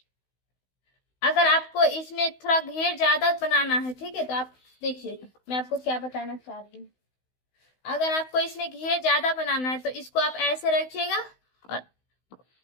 अगर आपको इसमें थोड़ा घेर ज्यादा बनाना है, ठीक है, तो आप देखिए मैं आपको क्या बताना चाह रही हूँ। अगर आपको इसमें घेर ज्यादा बनाना है तो इसको आप ऐसे रखिएगा और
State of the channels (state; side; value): late; right; 16 ms